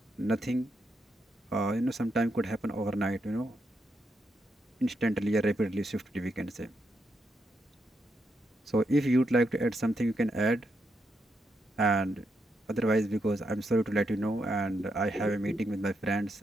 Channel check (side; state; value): both; normal; correlation 0.82